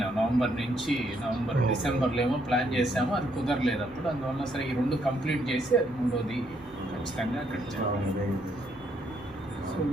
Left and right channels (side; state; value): both; normal; correlation 0.72